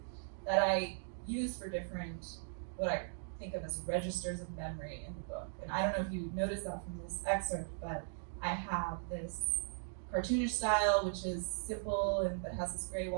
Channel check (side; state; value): left; silent; digital silence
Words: that I use for different, what I think of as registers of memory in the book. And I don't know if you noticed that from this excerpt, but I have this cartoonish style, which is simple and but has this gray